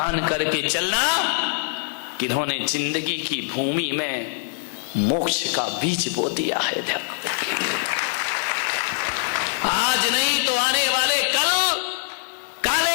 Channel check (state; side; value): silent; right; 63 dB below the other